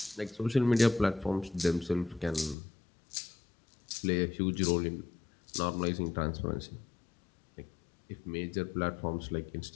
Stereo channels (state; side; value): drops out; right; at 2.6 s